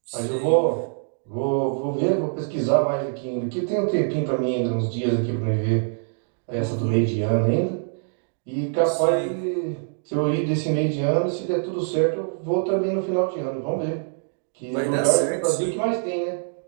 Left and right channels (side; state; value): left; silent; digital silence